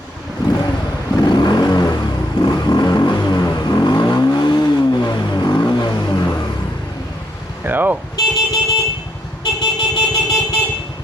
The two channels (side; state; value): both; normal; correlation 0.76